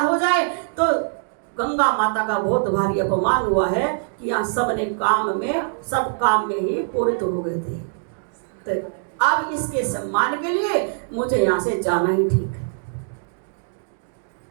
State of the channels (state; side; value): silent; left; digital silence